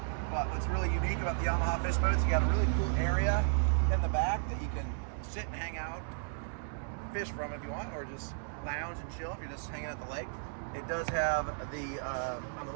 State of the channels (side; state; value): left; silent; digital silence